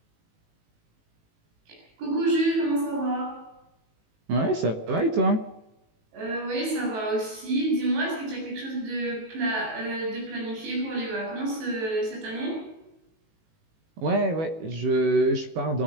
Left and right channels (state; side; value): late; left; 18 ms